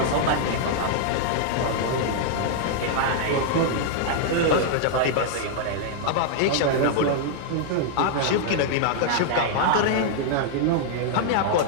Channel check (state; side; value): different; both; correlation -0.01